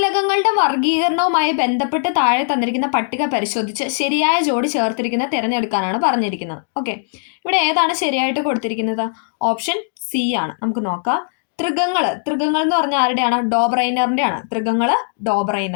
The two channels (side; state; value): right; silent; digital silence